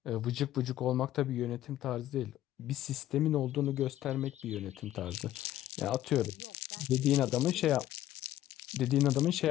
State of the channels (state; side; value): quieter; right; 13.5 dB